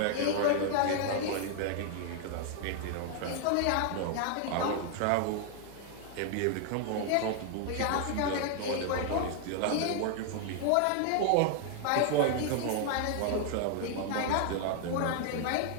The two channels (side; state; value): both; different; correlation 0.00